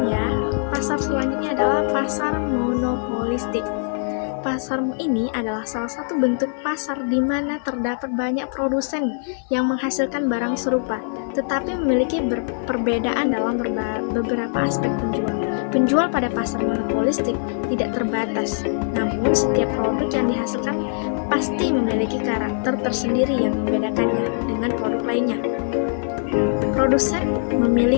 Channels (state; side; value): silent; right; 64 dB below the other